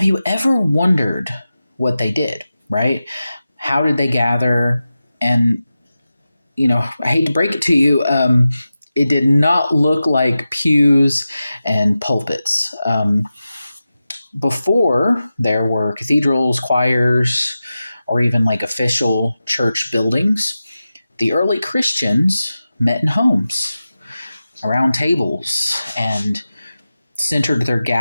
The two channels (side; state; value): both; inverted; correlation -0.93